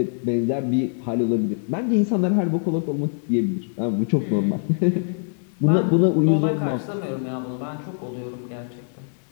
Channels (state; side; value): silent; right; 61 dB below the other